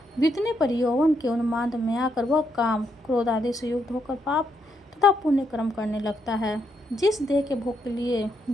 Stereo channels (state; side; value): normal; both; correlation 0.78